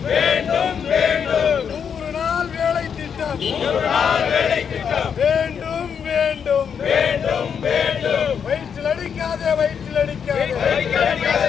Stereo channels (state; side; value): quieter; right; 7.3 dB